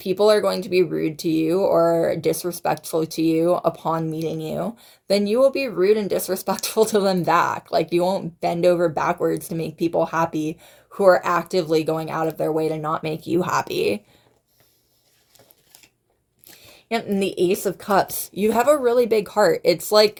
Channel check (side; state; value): both; identical; correlation 1.00